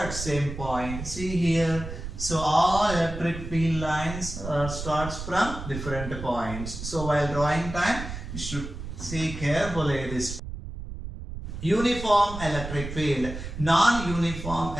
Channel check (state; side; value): noise; right; rumble, 8 dB below the sound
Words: same point. See here, so all electric field lines starts from different points. So while drawing time, you should see carefully this. Uniform electric field, non-uniform